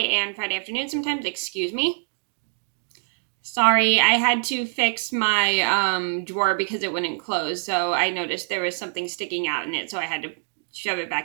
and Friday afternoon sometimes, excuse me. Sorry, I had to fix my drawer because it wouldn't close, so I noticed there was something sticking out in it, so I had to shove it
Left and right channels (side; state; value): left; silent; digital silence